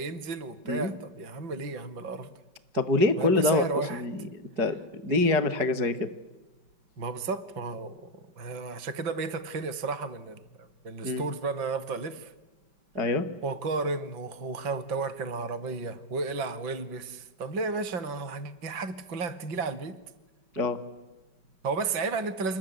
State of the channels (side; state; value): left; late; 5.2 ms